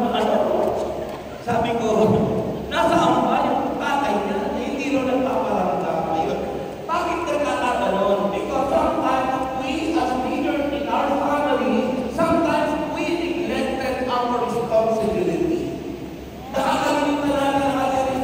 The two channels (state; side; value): identical; both; correlation 1.00